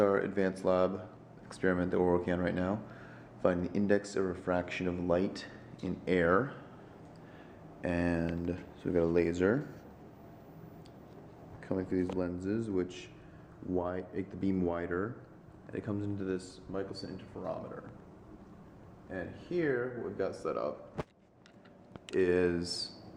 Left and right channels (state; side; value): identical; both; correlation 1.00